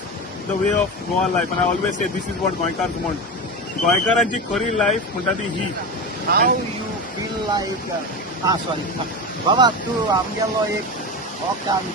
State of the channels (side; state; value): both; normal; correlation 0.23